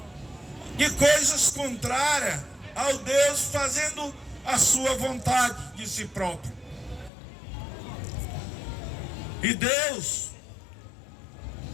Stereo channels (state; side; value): drops out; right; at 7.1 s